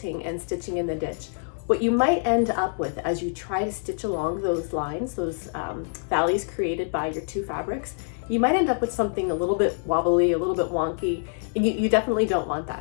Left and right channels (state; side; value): silent; right; digital silence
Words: and stitching in the ditch, what you might end up with as you try to stitch along those lines, those valleys created by your two fabrics, you might end up with something a little bit wobbly, a little bit wonky, and you definitely don't want